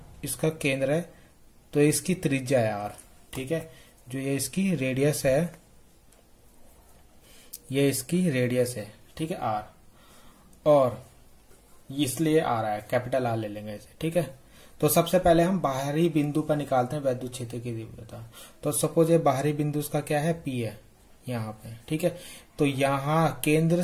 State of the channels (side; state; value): both; identical; correlation 1.00